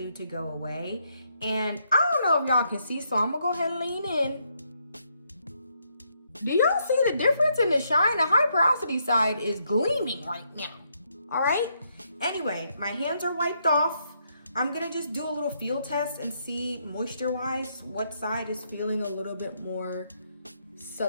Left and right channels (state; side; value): inverted; both; correlation -0.76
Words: to go away. And I don't know if y'all can see, so I'm gonna go ahead and lean in. Do y'all see the difference in the shine? The High Porosity side is gleaming right now. All right, anyway, my hands are wiped off. I'm gonna just do a little feel test and see moisture-wise what side is feeling a little bit more